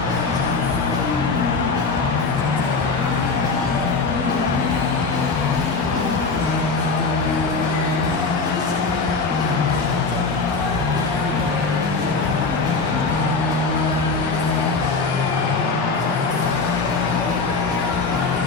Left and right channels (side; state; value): right; quieter; 4.2 dB